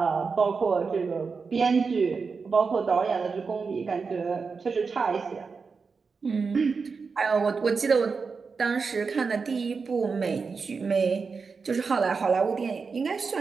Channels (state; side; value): quieter; left; 5.0 dB